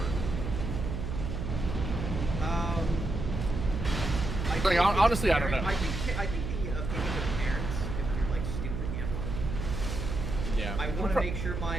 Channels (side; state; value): right; noise; hum, 4 dB below the sound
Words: Like, honestly, I don't know. I think the opinion of parents, if you're like stupid, you have one. Yeah. I want to make sure